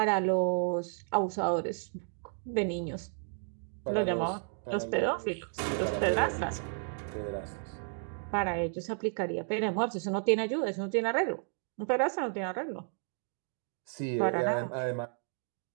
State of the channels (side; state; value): left; silent; 56 dB below the other